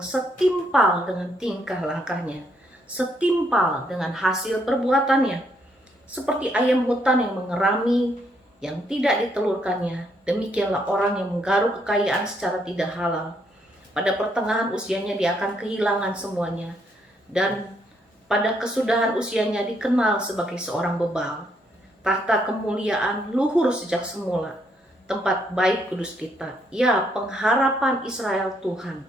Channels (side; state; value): both; normal; correlation 0.73